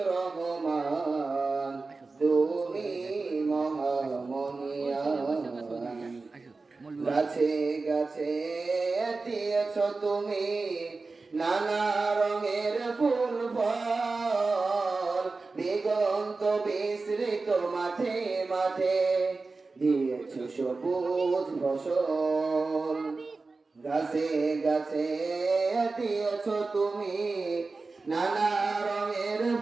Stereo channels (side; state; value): left; quieter; 3.8 dB